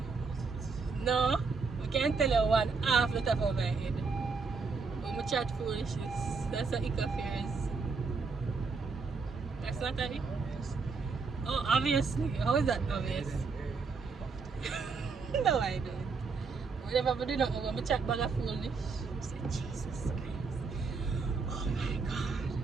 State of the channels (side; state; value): left; quieter; 4.7 dB